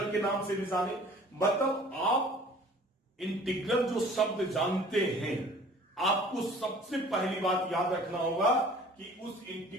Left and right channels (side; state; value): both; normal; correlation 0.49